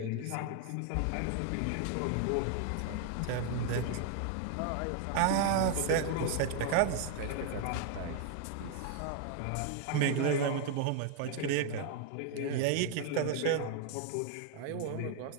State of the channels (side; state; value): both; different; correlation 0.00